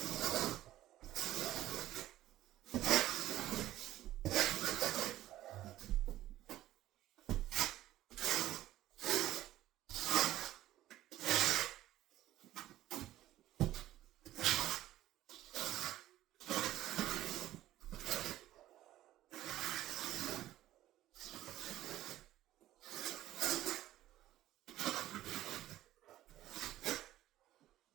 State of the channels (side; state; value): left; quieter; 14.3 dB